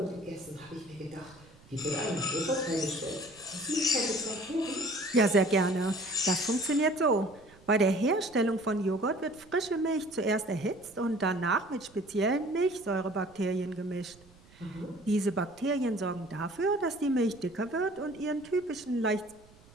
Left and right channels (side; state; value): right; noise; rumble, 26 dB below the sound